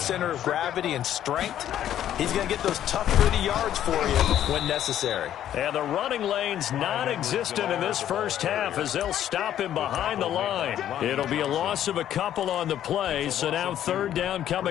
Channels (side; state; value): right; quieter; 11.1 dB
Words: of gravity and strength, he's going to get those tough, gritty yards for you when necessary. And the running lane's non-existent in this first half as they'll stop him behind the line. It'll be a loss of a couple on the play, so now third down